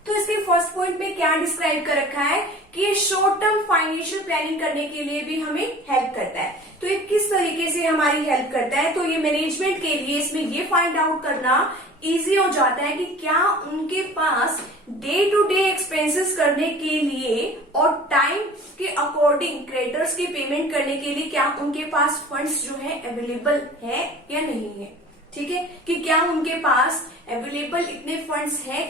तो इसके फर्स्ट पॉइंट में क्या डिस्क्राइब कर रखा है कि ये शॉर्ट टर्म फाइनेंशियल प्लानिंग करने के लिए भी हमें हेल्प करता है। तो ये किस तरीके से हमारी हेल्प करता है, तो ये मैनेजमेंट के लिए इसमें ये फाइंड आउट करना इजी हो जाता है कि क्या उनके पास डे टू डे एक्सपेंसेस करने के लिए और टाइम के अकॉर्डिंग क्रेडिटर्स की पेमेंट करने के लिए क्या उनके पास फंड्स जो है अवेलेबल है या नहीं है। ठीक है, कि क्या उनके पास अवेलेबल इतने फंड्स हैं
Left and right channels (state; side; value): normal; both; correlation 0.43